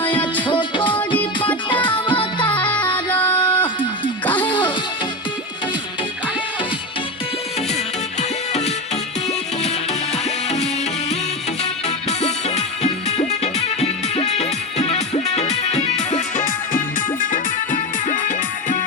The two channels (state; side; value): normal; both; correlation 0.19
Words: छोकरी पटावतारा काहे हो